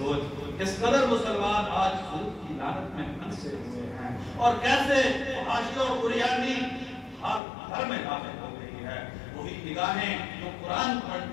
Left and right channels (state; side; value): drops out; right; at 7.4 s